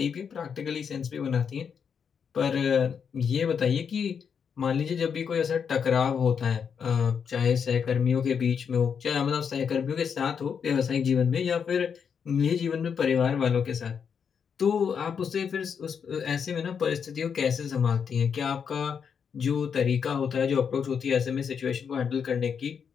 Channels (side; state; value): right; quieter; 6.9 dB